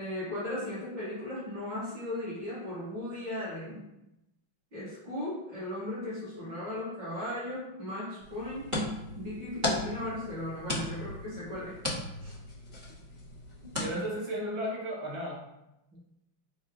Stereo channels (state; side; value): late; left; 5.2 ms